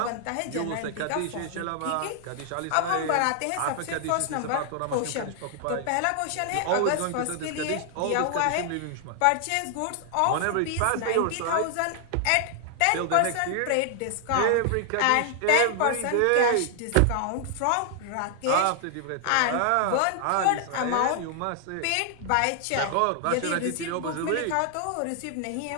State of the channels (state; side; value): different; both; correlation 0.00